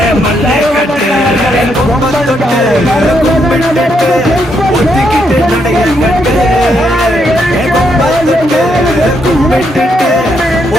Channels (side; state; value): both; normal; correlation 0.77